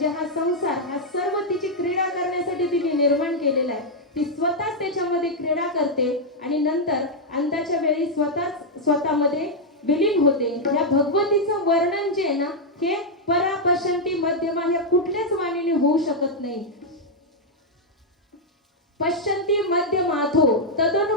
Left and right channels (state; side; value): normal; both; correlation -0.02